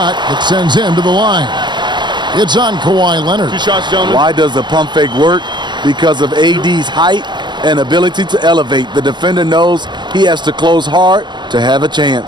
that sends him to the line. It's on Kawhi Leonard. 2 shots, gentlemen. Why does the pump fake work? Because of AD's height and ability to elevate. The defender knows he has to close hard to have a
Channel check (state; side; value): late; left; 0.22 ms